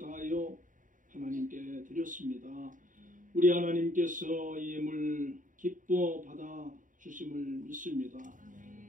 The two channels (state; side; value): late; left; 0.38 ms